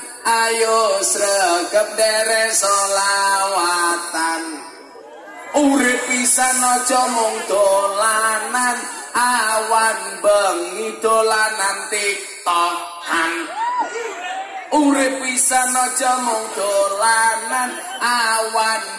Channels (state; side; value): identical; both; correlation 1.00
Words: ayo sregep derek solawatan. Urip pisan aja mung dolanan, awan bengi dolanan tiktokan. Urip pisan aja mung dolanan, awan